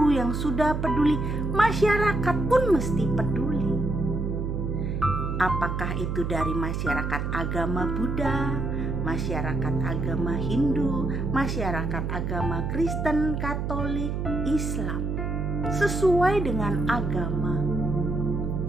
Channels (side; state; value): right; noise; hum, 2 dB below the sound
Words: yang sudah peduli, masyarakat pun mesti peduli. Apakah itu dari masyarakat agama Buddha, masyarakat agama Hindu, masyarakat agama Kristen, Katolik, Islam, sesuai dengan agama